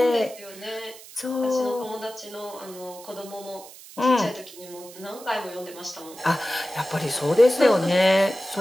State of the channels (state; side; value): noise; right; hiss, 18 dB below the sound